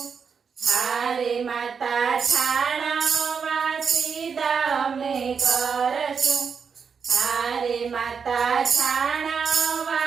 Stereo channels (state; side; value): quieter; left; 6.1 dB